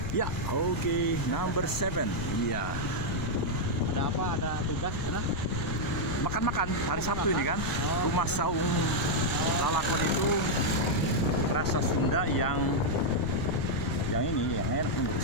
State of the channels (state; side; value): noise; left; rumble, 5 dB below the sound